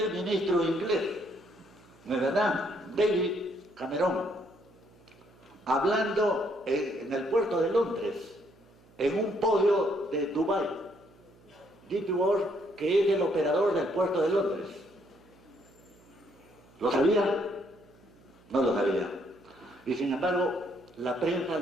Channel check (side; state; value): right; noise; hum, 28 dB below the sound